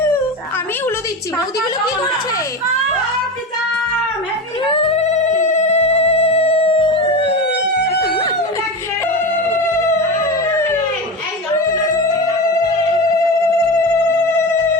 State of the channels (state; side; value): normal; both; correlation 0.23